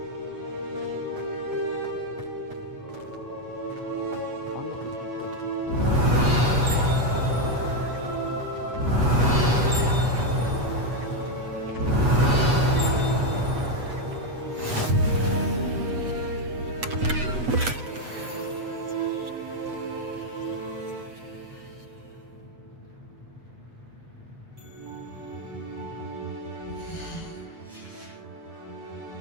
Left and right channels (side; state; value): left; late; 8.2 ms